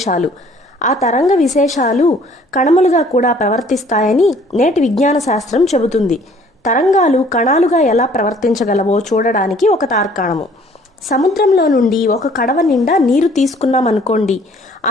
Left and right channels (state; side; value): normal; both; correlation 0.57